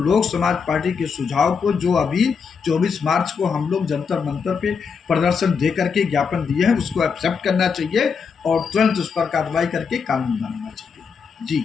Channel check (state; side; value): quieter; right; 5.9 dB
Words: समाज पार्टी के सुझाव को, जो अभी 24 मार्च को हम लोग जंतर मंतर पे प्रदर्शन दे करके ज्ञापन दिए हैं, उसको एक्सेप्ट करना चाहिए और तुरंत उस पर कार्रवाई करके कानून बनाना चाहिए।